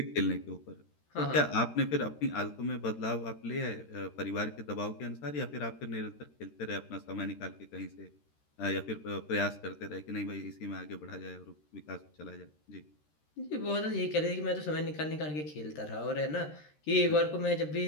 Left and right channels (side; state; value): right; late; 13 ms